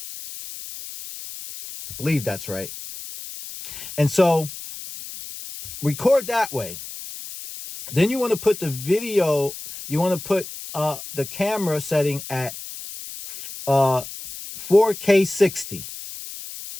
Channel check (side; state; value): left; noise; hiss, 11 dB below the sound